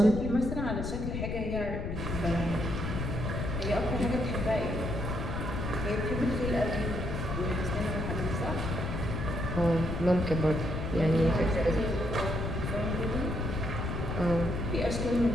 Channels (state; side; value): noise; left; rumble, 3 dB below the sound